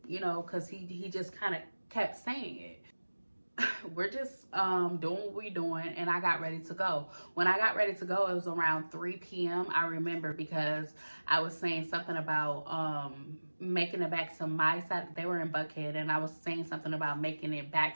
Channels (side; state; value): both; inverted; correlation -1.00